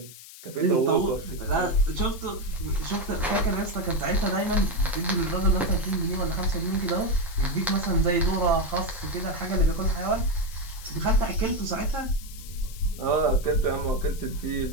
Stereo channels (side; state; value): left; noise; hiss, 17 dB below the sound